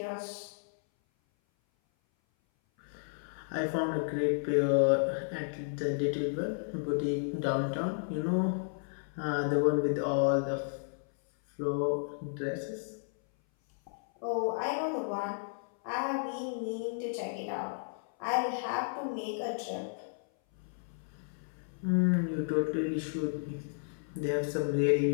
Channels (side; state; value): right; silent; 56 dB below the other